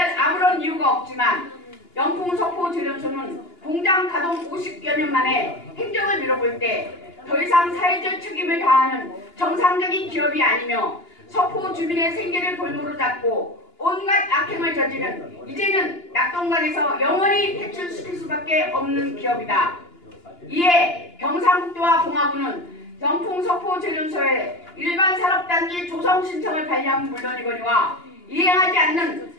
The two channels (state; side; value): late; right; 2.9 ms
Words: 아무런 이유가 없지만 영풍 석포 재련소는 공장 가동 50여 년 만에 행정을 미뤄볼 때 더 이상 사회적 책임을 다하는 정상적인 기업이 아니며 석포 주민의 생계를 볼모로 잡고 온갖 악행을 저지른 이제는 낙동강에서 영원히 퇴출시킬 수밖에 없는 기업이다. 이에 경상북도와 봉화군은 영풍 석포 재련소에 일반 산업단지 조성 신청을 관리하면 물론이거니와 이행하지 않는